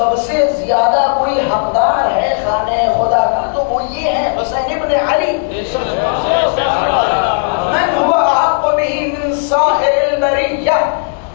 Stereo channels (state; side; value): silent; right; digital silence